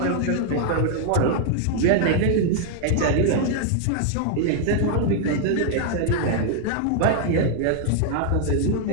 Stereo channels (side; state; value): both; different; correlation 0.00